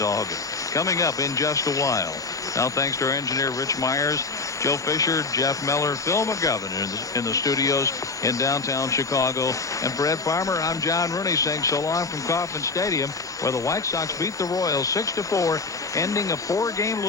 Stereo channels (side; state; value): right; quieter; 4.0 dB